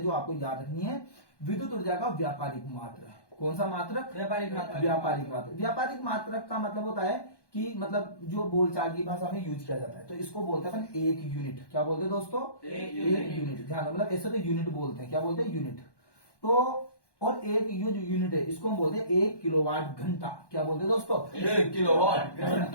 जो आपको याद रखनी है। विद्युत ऊर्जा का व्यापारिक मात्रक, कौन सा मात्रक? व्यापारिक मात्रक। व्यापारिक मात्रक। व्यापारिक मात्रक का मतलब होता है कि मतलब जो बोलचाल की भाषा में यूज किया जाता है, तो इसको बोलते हैं अपन एक यूनिट। क्या बोलते हैं दोस्तों? एक यूनिट। ध्यान रखो, मतलब ऐसे तो यूनिट बोलते हैं। क्या बोलते हैं? यूनिट। तो और एक ये जो यूनिट है इसको हम बोलते हैं 1 किलोवाट घंटा। क्या बोलते हैं दोस्तों? 1 किलोवाट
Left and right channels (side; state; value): right; late; 1.1 ms